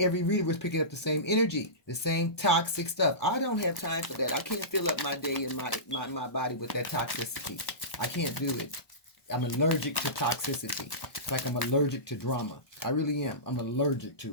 reader was picking up the same energy, the same toxic stuff. I don't have time for that. I can't fill up my day and my body with that toxicity. I can't do it. I'm allergic to toxicity. It's like I'm allergic to drama. I really am. I'm allergic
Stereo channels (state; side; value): late; right; 1.2 ms